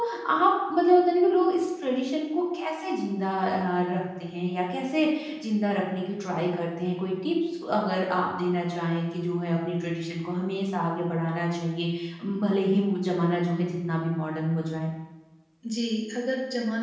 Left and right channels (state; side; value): identical; both; correlation 1.00